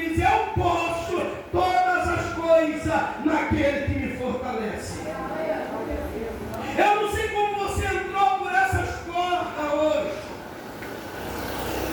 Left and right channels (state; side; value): identical; both; correlation 1.00